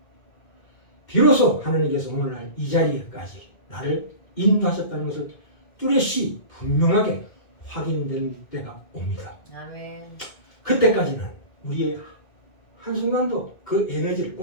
비로소 하나님께서 오늘날 이 자리에까지 나를 인도하셨다는 것을 뚜렷이 분명하게 확인된 때가 옵니다. 아멘. 그때까지는 우리의 한순간도 그 에너지를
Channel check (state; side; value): late; right; 2.1 ms